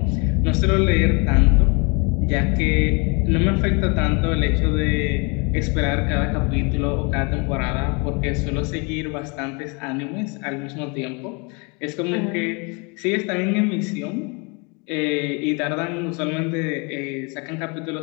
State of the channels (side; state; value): right; quieter; 31.6 dB